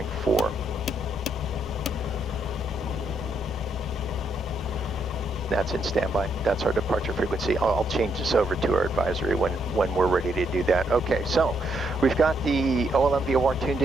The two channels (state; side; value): normal; both; correlation 0.75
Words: That's in standby. That's our departure frequency. I'll change this over to our advisory when we're ready to do that. Okay, so we've got the OLM VOR tuned